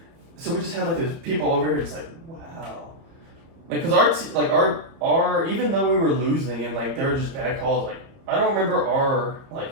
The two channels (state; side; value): late; left; 30 ms